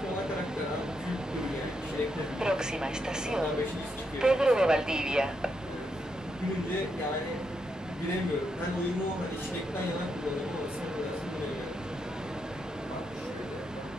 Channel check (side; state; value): both; normal; correlation 0.81